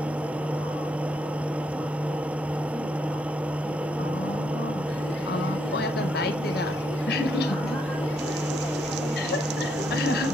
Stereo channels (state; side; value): normal; both; correlation 0.76